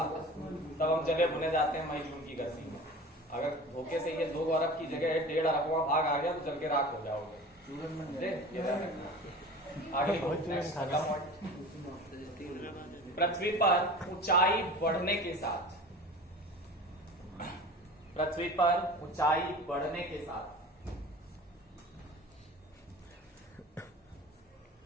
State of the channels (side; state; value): both; normal; correlation 0.37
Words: तब हम जले भुने जाते हैं मई जून की गर्मी में। अगर धोखे से ये 2 अरब की जगह 1.5 अरबवां भाग आ गया तो जल के राख हो जाओगे। आगे पृथ्वी पर ऊंचाई बढ़ने के साथ